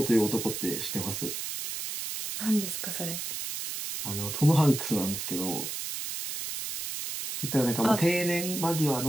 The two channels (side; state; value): right; noise; hiss, 5 dB below the sound